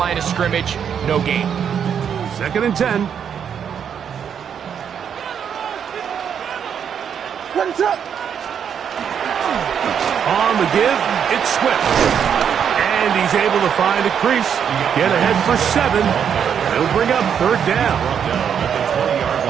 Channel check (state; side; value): quieter; left; 8.0 dB